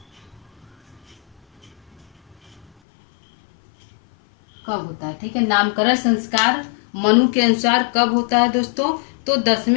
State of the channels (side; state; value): right; drops out; at 2.7 s